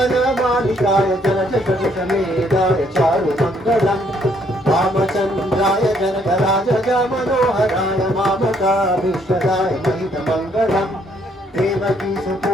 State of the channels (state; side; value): normal; both; correlation 0.68